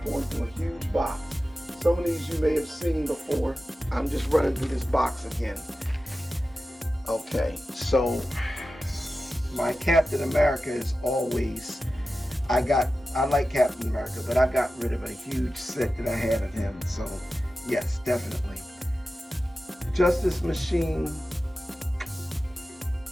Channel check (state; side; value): normal; both; correlation 0.94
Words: going through a huge box. Some of these you may have seen before. I'm just running through this box again. Okay, so my Captain America is always, I like Captain America, but I got rid of a huge set that I had of him. So yes, definitely. Justice Machine.